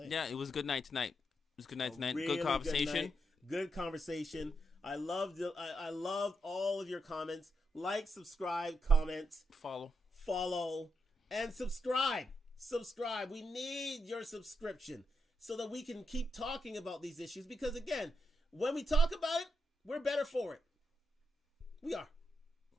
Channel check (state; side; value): normal; both; correlation 0.84